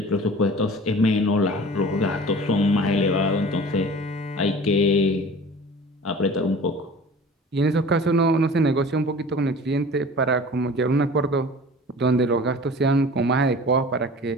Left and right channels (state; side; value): normal; both; correlation 0.42